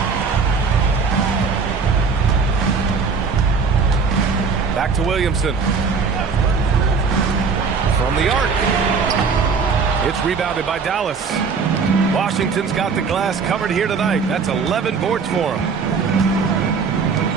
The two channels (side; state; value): left; quieter; 5.2 dB